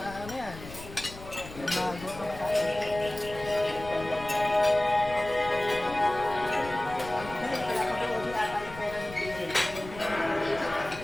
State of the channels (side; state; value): left; noise; rumble, 14 dB below the sound